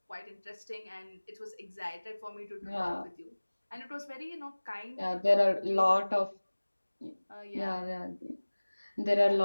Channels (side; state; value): both; inverted; correlation -1.00